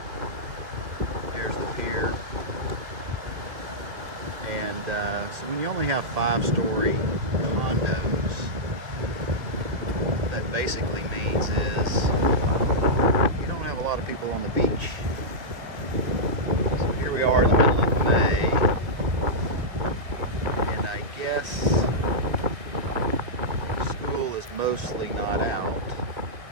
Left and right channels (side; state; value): left; late; 2.2 ms